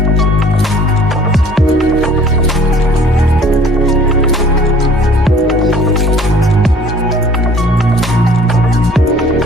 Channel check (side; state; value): both; normal; correlation 0.52